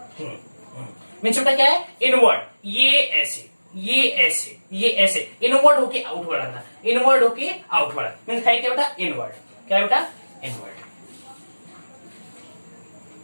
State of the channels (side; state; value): both; inverted; correlation -1.00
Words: मीन्स बेटा क्या है, इनवर्ड, ये ऐसे, ये ऐसे, ये ऐसे, इनवर्ड होके आउटवर्ड आना, इनवर्ड होके आउटवर्ड, मीन्स है क्या बेटा, इनवर्ड, क्या है बेटा, इनवर्ड,